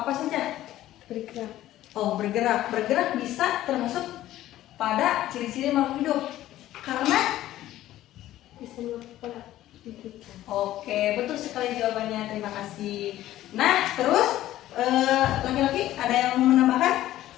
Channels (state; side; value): quieter; right; 14.1 dB